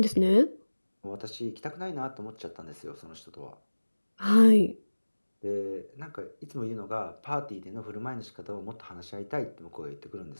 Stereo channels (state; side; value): inverted; both; correlation -1.00